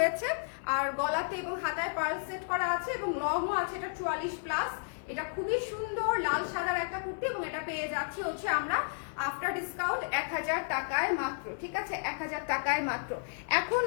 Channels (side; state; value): right; silent; 56 dB below the other